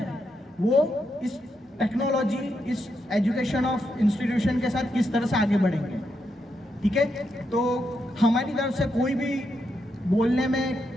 वो इस टेक्नोलॉजी, इस एजुकेशन ऑफ इंस्टीट्यूशन के साथ किस तरह से आगे बढ़ेंगे, ठीक है। तो हमारी तरफ से कोई भी बोलने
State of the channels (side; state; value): both; normal; correlation 0.82